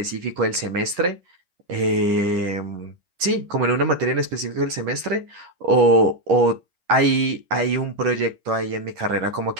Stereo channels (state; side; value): late; left; 11 ms